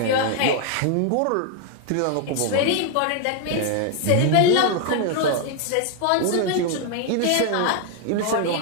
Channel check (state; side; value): different; both; correlation 0.00